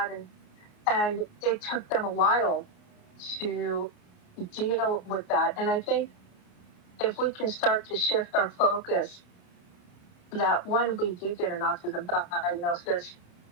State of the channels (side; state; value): right; late; 28 ms